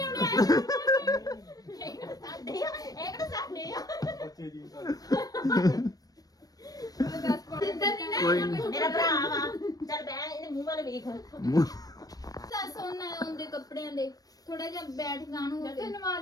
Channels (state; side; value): late; right; 0.18 ms